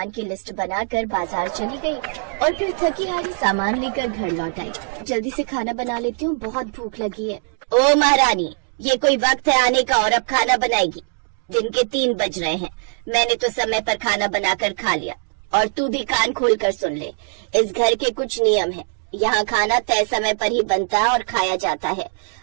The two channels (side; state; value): left; silent; 60 dB below the other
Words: की लिस्ट बनाकर बाजार चली गई और फिर थकी हारी सामान लेकर घर लौट आई। जल्दी से खाना बना लेती हूँ, बहुत भूख लगी है। ओ महारानी, ये कोई वक्त है आने का और अब खाना बनाएगी? दिन के 3 बज रहे हैं। मैंने तो समय पर खाना बनाकर खा लिया। और तू भी कान खोल कर सुन ले, इस घर के कुछ नियम है। यहाँ खाना तय समय पर ही बनता है और खाया जाता है,